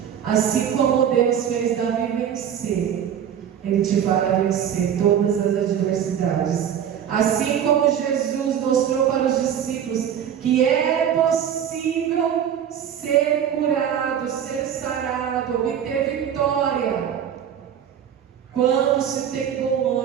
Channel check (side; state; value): left; quieter; 9.0 dB